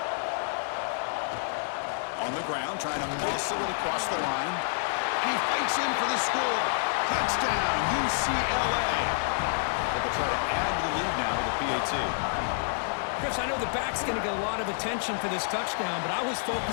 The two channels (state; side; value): silent; right; 59 dB below the other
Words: On the ground, trying to muscle it across the line. And he fights in for the score. Touchdown, UCLA. They'll try to add to the lead now with a PAT. Chris, I know the back's going to get a lot of attention for this touchdown, but I was